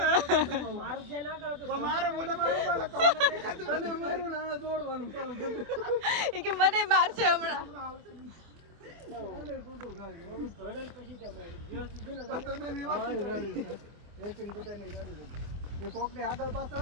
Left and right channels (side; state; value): left; late; 25 ms